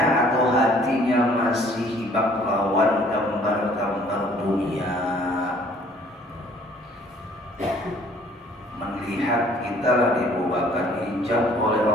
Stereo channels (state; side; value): normal; both; correlation 0.57